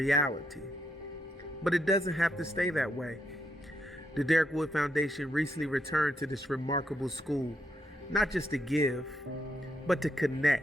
But it doesn't have to stay that way. The Derrick Wood Foundation recently returned to this remarkable school, not just to give, but to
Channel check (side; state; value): both; normal; correlation 0.79